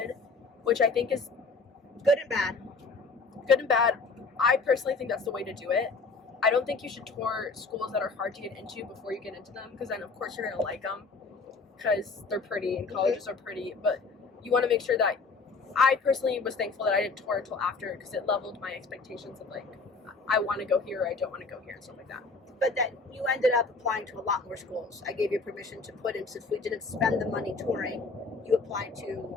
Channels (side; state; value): right; quieter; 4.1 dB